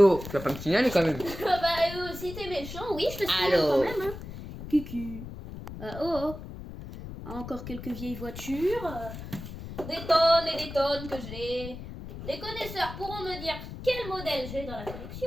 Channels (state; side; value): noise; left; rumble, 11 dB below the sound